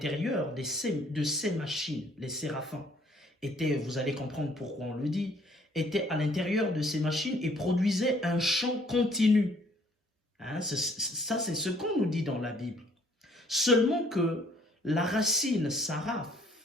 de ces machines. Les séraphins étaient, vous allez comprendre pourquoi on le dit, étaient à l'intérieur de ces machines et produisaient un chant continu. Hein, ça, c'est ce qu'on nous dit dans la Bible. Seulement que la racine saraph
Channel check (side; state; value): both; normal; correlation 0.61